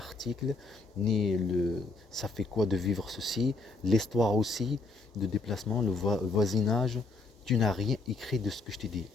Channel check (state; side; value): quieter; right; 3.6 dB